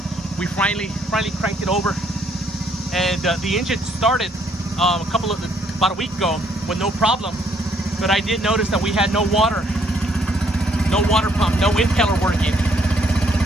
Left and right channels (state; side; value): normal; both; correlation 0.68